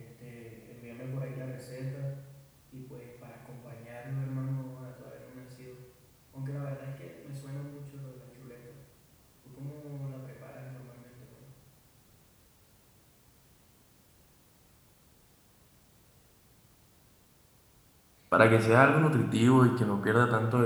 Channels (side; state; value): both; identical; correlation 1.00